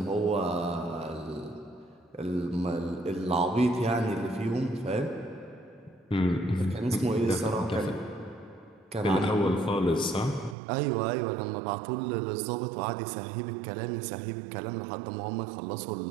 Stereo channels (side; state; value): left; drops out; at 10.6 s